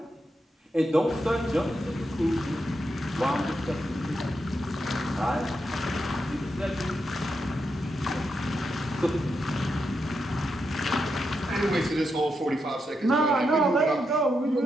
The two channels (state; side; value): normal; both; correlation 0.84